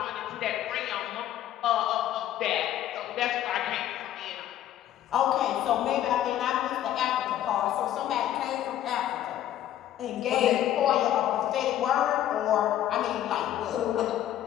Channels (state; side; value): quieter; right; 12.0 dB